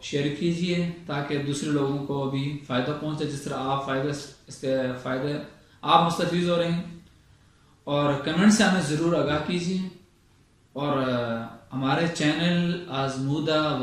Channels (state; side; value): identical; both; correlation 1.00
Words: شیئر کیجئے تاکہ دوسرے لوگوں کو بھی فائدہ پہنچے، جس طرح آپ مستفید ہو رہے ہیں۔ اور کمنٹ سے ہمیں ضرور آگاہ کیجئے، اور ہمارے چینل آزمودہ